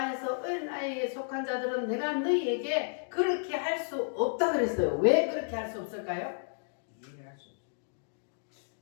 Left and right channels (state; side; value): silent; right; digital silence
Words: 어린 아이에 속한 자들은 내가 너희에게 그렇게 할 수 없다 그랬어요. 왜 그렇게 할 수 없을까요?